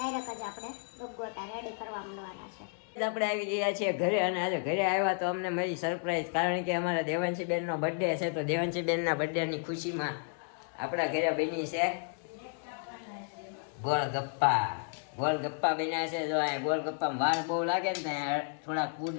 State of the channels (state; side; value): silent; right; 56 dB below the other